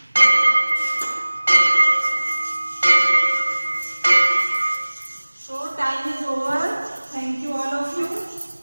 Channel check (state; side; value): inverted; both; correlation -1.00